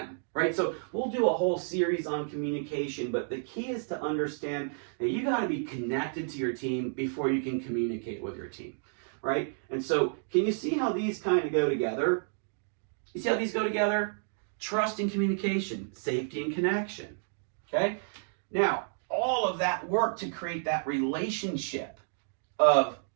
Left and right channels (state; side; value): silent; left; digital silence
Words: right? So we'll do a whole series on communication, but the key is to understand that you got to be connected to your team before you can communicate with your team, right? And so can you see how these kind of go together? You see how these go together? Trust and communication, safety and connection, okay? Now, all of that work to create that relationship of